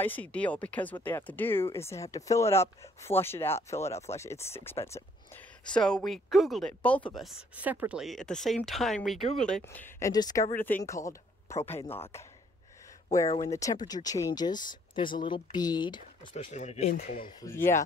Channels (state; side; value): normal; both; correlation 0.64